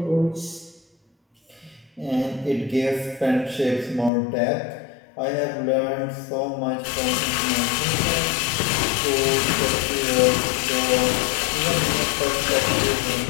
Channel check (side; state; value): right; drops out; at 4.1 s